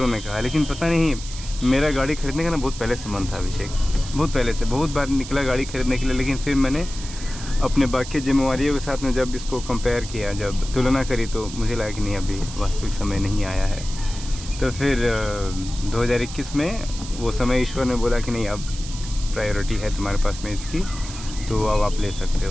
ने कहा, लेकिन पता नहीं मेरा गाड़ी खरीदने का ना बहुत पहले से मन था अभिषेक, बहुत पहले से, बहुत बार निकला गाड़ी खरीदने के लिए। लेकिन फिर मैंने अपने बाकी जिम्मेवारियों के साथ में जब इसको कंपेयर किया, जब तुलना करी, तो मुझे लगा कि नहीं अभी वास्तविक समय नहीं आया है। तो फिर 2021 में वो समय ईश्वर ने बोला कि नहीं अब प्रायोरिटी है तुम्हारे पास में इसकी, तो अब आप ले सकते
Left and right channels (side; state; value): right; noise; hiss, 12 dB below the sound